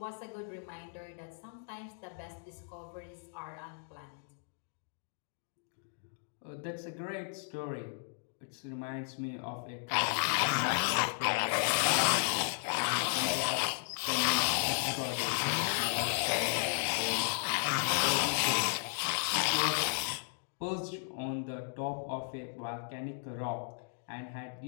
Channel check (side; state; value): right; silent; digital silence